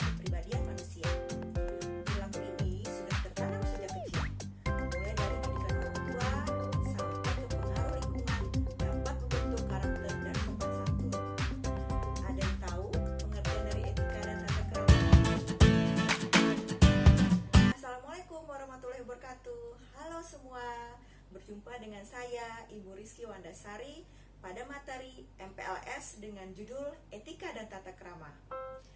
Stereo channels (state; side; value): identical; both; correlation 1.00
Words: manusia. Perilaku ini sudah tertanam sejak kecil, mulai dari didikan orang tua sampai ke pengaruh lingkungan dapat membentuk karakter dan sopan santun. Ada yang tahu pengertian dari etika dan tata krama? Assalamualaikum warahmatullahi wabarakatuh. Halo semua. Berjumpa dengan saya, Ibu Rizky Wandasari, pada materi MPLS dengan judul Etika dan Tata Krama.